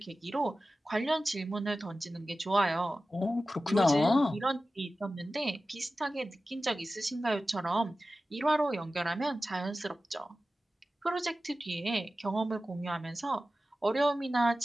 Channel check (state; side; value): normal; both; correlation 0.95